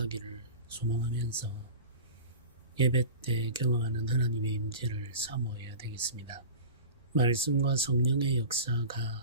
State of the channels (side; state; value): both; inverted; correlation -0.34